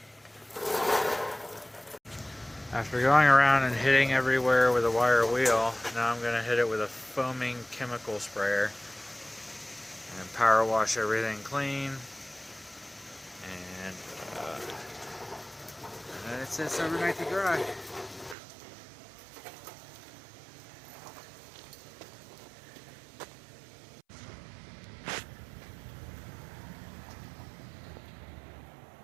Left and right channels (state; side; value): drops out; left; at 18.4 s